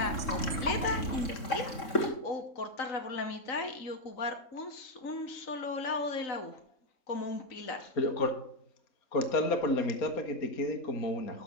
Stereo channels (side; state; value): right; late; 3.7 ms